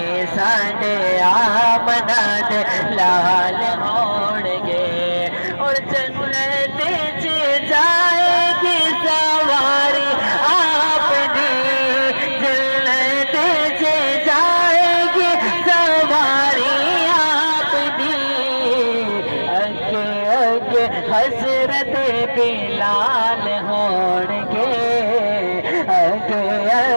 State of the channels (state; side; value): inverted; both; correlation -1.00